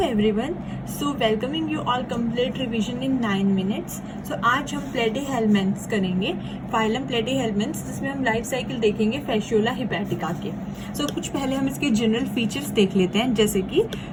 everyone, so welcoming you all complete revision in 9 minutes. So आज हम platyhelminthes करेंगे, phylum platyhelminthes, जिसमें हम लाइफ साइकिल देखेंगे फैसियोला हिपैटिका के। सो कुछ पहले हम इसके जनरल फीचर्स देख लेते हैं, जैसे कि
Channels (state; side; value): identical; both; correlation 1.00